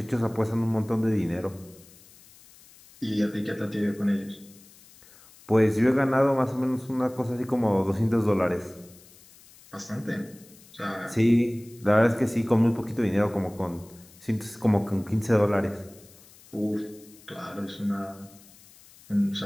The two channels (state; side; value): noise; left; hiss, 24 dB below the sound